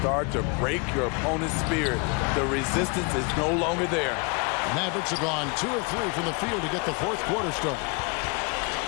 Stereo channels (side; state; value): right; quieter; 31.9 dB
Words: to break your opponent's spirit. The resistance is no longer there. Mavericks have gone 2 of 3 from the field to get the fourth quarter started.